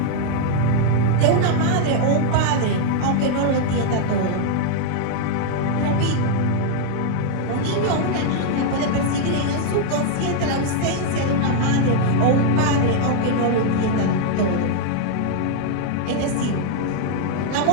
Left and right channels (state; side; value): different; both; correlation 0.00